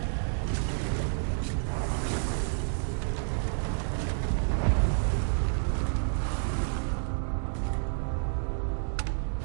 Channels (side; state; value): left; silent; digital silence